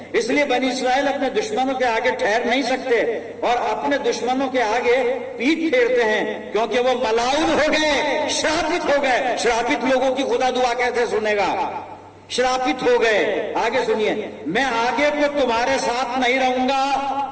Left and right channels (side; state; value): both; identical; correlation 1.00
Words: इसलिए बनी इस्राएल अपने दुश्मनों के आगे ठहर नहीं सकते और अपने दुश्मनों के आगे पीठ फेरते हैं, क्योंकि वो मलाउन हो गए, श्रापित हो गए। श्रापित लोगों की खुदा दुआ कैसे सुनेगा? श्रापित हो गए। आगे सुनिए, मैं आगे को तुम्हारे साथ नहीं रहूंगा।